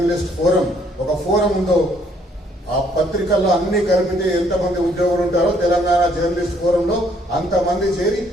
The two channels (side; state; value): both; normal; correlation 0.66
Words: ఫోరం ఒక ఫోరం ఉందో, ఆ పత్రికల్లో అన్ని కలిపితే ఎంతమంది ఉద్యోగులు ఉంటారో తెలంగాణ జర్నలిస్ట్ ఫోరంలో అంతమంది చేరి